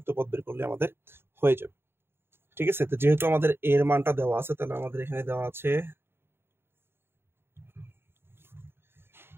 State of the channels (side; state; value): left; late; 0.11 ms